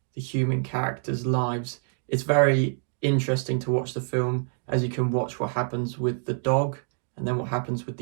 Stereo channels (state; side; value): silent; left; 59 dB below the other